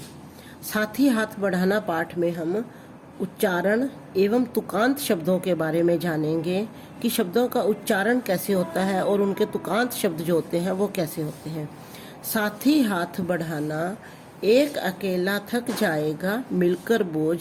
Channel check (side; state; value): both; identical; correlation 1.00